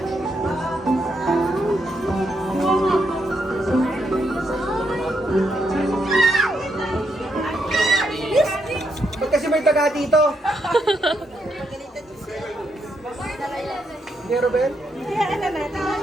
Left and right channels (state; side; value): normal; both; correlation 0.79